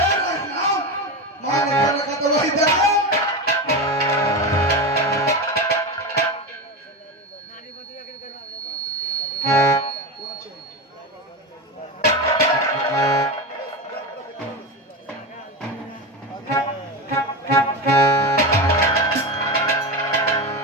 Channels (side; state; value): both; normal; correlation 0.20